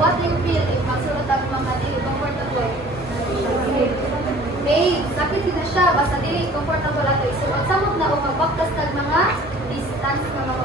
do you feel if magsulod ang mga dili comfortable? Babe, sakit na siya, basta dili comfortable ato. Isuot samot na o magbaktas tag mga distance na mga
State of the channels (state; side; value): normal; both; correlation 0.49